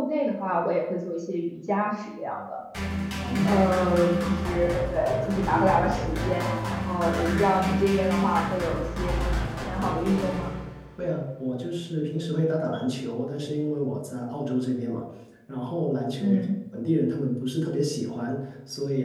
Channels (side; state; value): both; identical; correlation 1.00